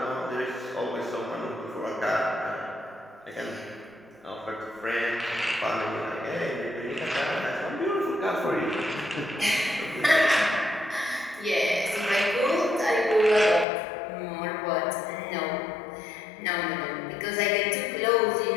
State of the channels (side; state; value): right; drops out; at 13.7 s